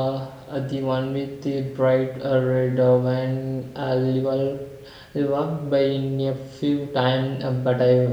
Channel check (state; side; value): identical; both; correlation 1.00